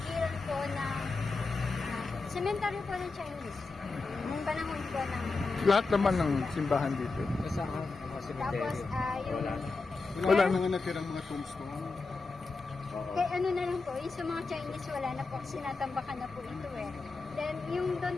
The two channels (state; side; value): quieter; right; 4.0 dB